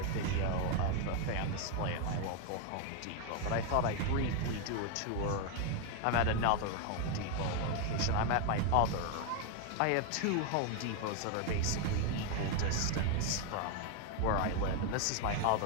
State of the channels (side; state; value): both; different; correlation 0.01